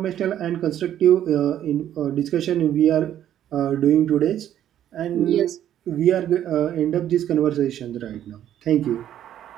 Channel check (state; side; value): quieter; left; 11.1 dB